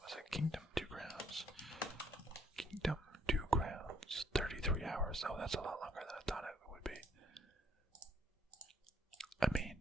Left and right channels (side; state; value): both; normal; correlation 0.67